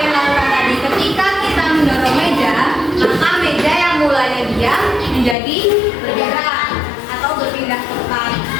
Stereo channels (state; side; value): drops out; right; at 5.4 s